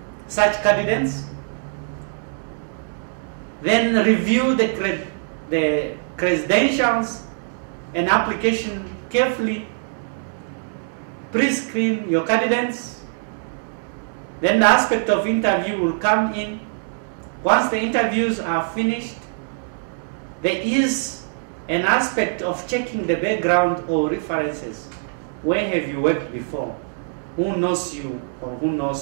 such candidates, then review the credentials and application carefully, pre-screen your candidates. Then the aspect of interview will come in. Once the interviews are finished, there is an aspect of checking the background or references. Where have you worked before? Who knows you or who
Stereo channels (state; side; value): silent; left; digital silence